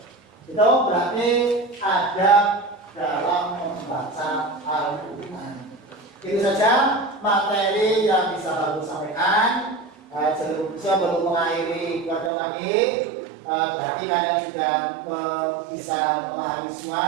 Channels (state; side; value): drops out; left; at 12.3 s